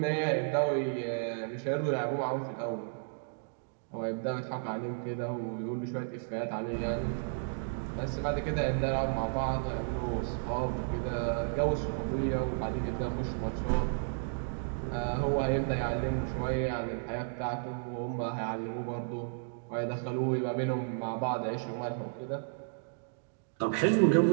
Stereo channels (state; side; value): silent; left; digital silence